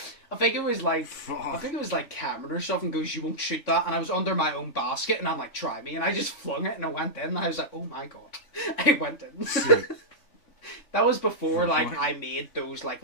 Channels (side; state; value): right; late; 3.5 ms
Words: I think it was like Cameron or something goes, you won't shoot that, and I was under my own basket, and I'm like, try me, and I just flung it, and I went in, and I was like, oh my god, I went in. That was before like I made those like